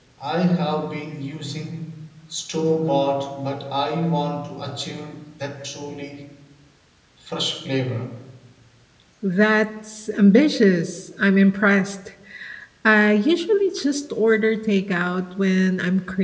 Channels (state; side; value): identical; both; correlation 1.00